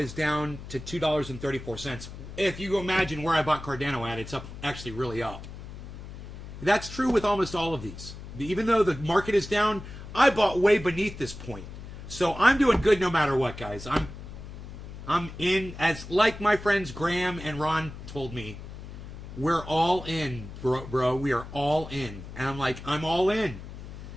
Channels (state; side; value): noise; left; hum, 12 dB below the sound